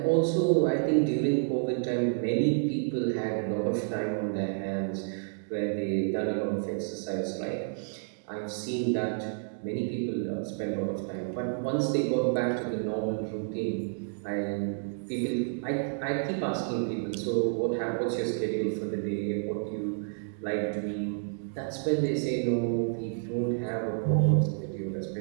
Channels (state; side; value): silent; left; digital silence